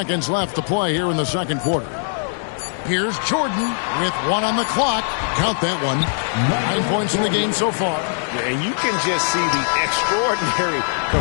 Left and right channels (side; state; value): right; silent; digital silence